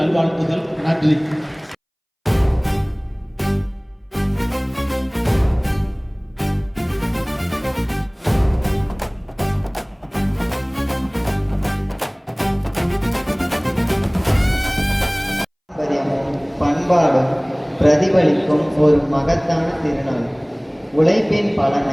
நல்வாழ்த்துகள். நன்றி. பண்பாடும் பிரதிபலிக்கும் ஒரு மகத்தான திருநாள். உழைப்பின்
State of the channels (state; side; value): identical; both; correlation 1.00